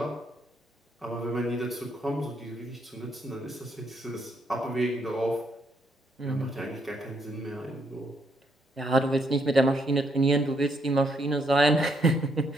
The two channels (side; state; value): both; normal; correlation 0.74